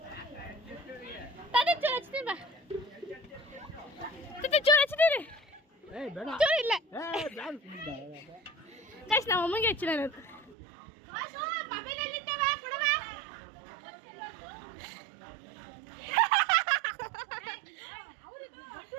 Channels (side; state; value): left; drops out; at 10.6 s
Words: ಚೂರು ಹಚ್ತೀನಿ ಬಾ ಚೂರು ಹಚ್ತೀನಿ ಚೂರು ಇಲ್ಲ ಗೈಸ್ ನಮ್ಮ ಅಮ್ಮಂಗೆ ಹಚ್ಚಿಲ್ಲ ನಾನು